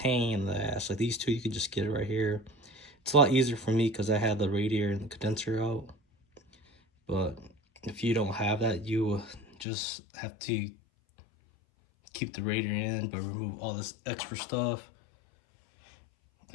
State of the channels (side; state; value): right; drops out; at 9.7 s